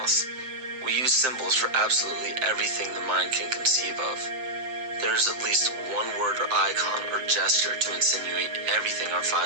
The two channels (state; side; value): late; left; 7.7 ms